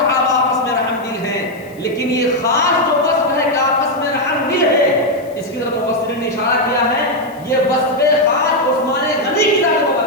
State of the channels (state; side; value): noise; left; hiss, 27 dB below the sound